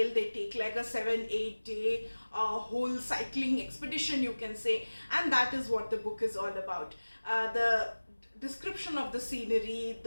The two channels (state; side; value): inverted; both; correlation -1.00